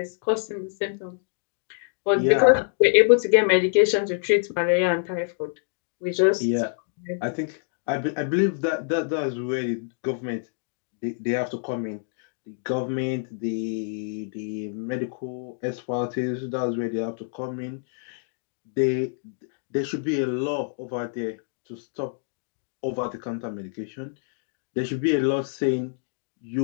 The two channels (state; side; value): silent; right; digital silence